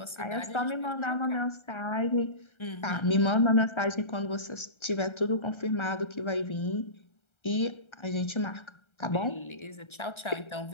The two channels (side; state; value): right; late; 1.3 ms